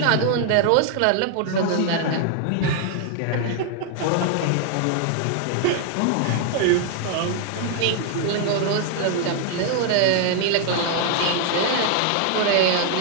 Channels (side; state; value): both; different; correlation 0.00